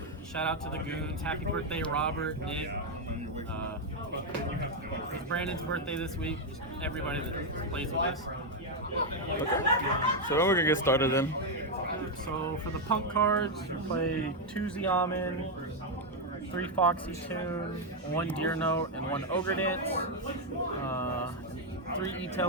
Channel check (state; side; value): normal; both; correlation 0.02